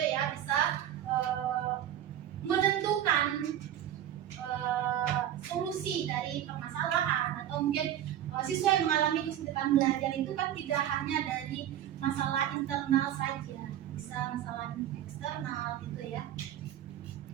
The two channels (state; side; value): quieter; left; 11.3 dB